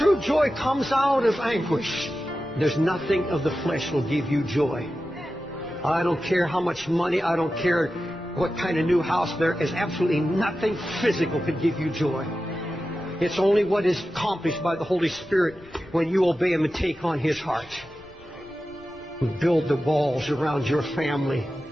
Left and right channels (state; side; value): noise; left; rumble, 25 dB below the sound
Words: joy comes out of anguish. There's nothing of the flesh will give you joy. I don't care how much money, I don't care what kind of new house. There is absolutely nothing physical could give you joy. It's only what is accomplished by the Holy Spirit when you obey Him and take on His heart. Build the walls around your family.